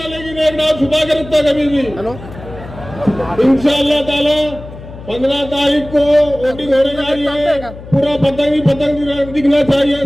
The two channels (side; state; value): left; noise; hum, 15 dB below the sound